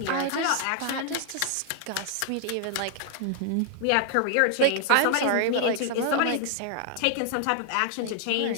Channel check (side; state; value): both; different; correlation 0.00